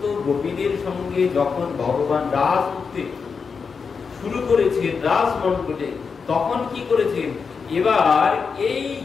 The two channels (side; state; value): right; quieter; 5.5 dB